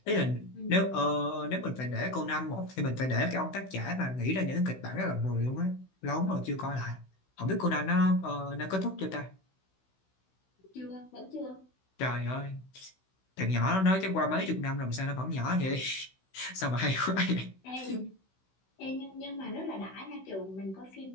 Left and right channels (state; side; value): late; right; 16 ms